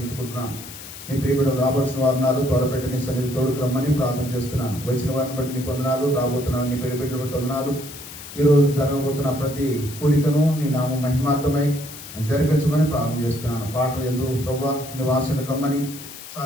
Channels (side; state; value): left; noise; hiss, 14 dB below the sound